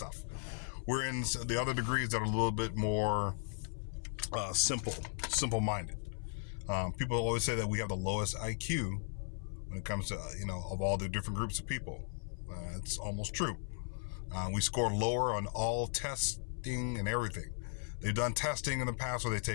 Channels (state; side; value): silent; right; 53 dB below the other